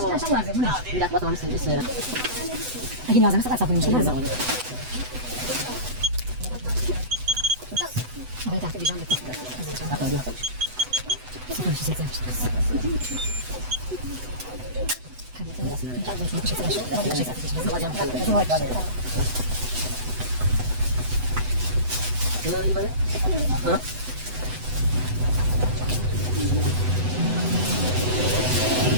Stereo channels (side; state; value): left; late; 8.0 ms